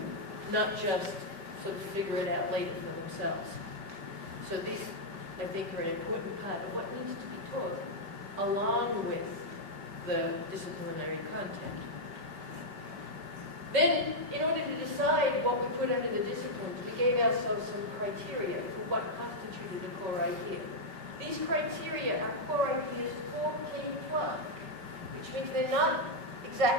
not just sort of figure it out later for themselves. So these, I think, are an important part of what needs to be taught along with the disciplinary content. Then, in order to decide what we put under the disciplines, we gave ourselves some criteria for what constituted a core idea. These criteria are core ideas for K-12, which means they're not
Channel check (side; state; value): left; late; 5.1 ms